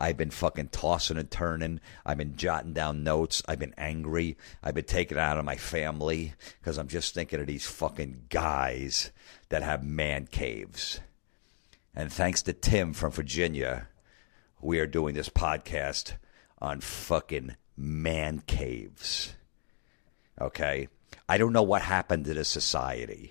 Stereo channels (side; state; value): right; silent; digital silence